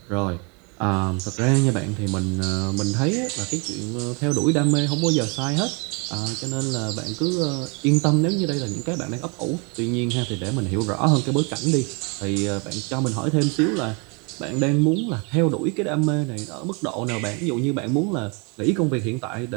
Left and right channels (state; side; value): quieter; left; 32.5 dB